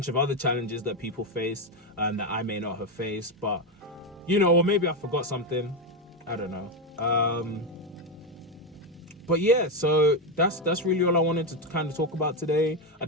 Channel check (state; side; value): normal; both; correlation 0.09